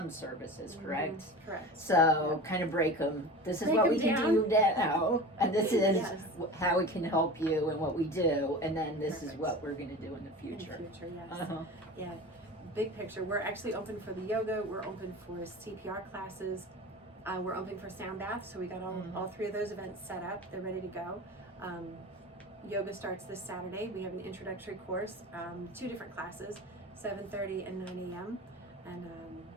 services, correct? Correct. So kind of break them. This is what we can do now, and this is how we can help you and what we do, and then this is what we're going to do in the future. In the future, yes. Yeah. Big picture. We're actually open for the yoga. We're open for CPR classes. We're open for sound baths. So we got all three of those events set up. They're ready to go. Yoga starts this Saturday. We have an introductory course, 2 different classes, 7:30 and 9 a.m. And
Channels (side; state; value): both; normal; correlation 0.33